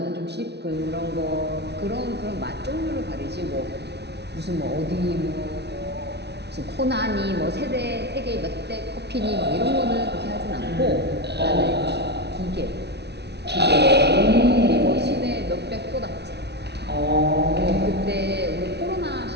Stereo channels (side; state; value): left; late; 0.49 ms